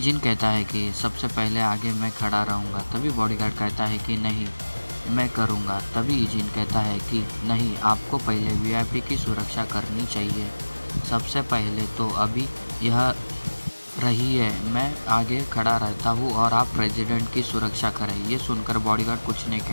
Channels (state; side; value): inverted; both; correlation -1.00